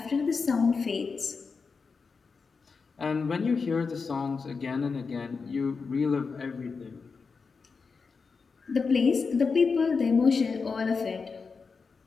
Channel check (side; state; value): right; quieter; 4.9 dB